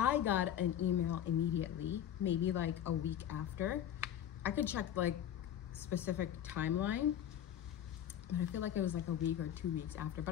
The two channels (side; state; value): right; quieter; 10.3 dB